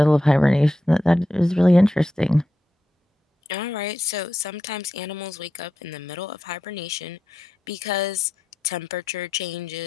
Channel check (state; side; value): normal; both; correlation 0.87